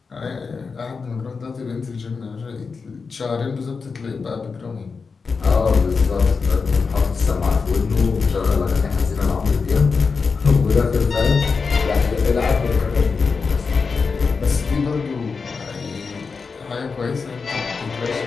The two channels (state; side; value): quieter; right; 4.9 dB